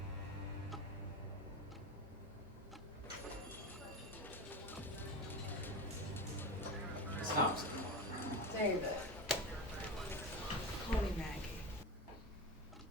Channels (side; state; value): both; normal; correlation 0.24